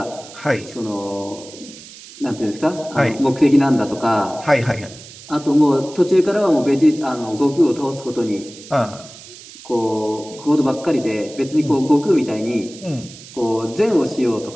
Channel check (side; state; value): right; noise; hiss, 18 dB below the sound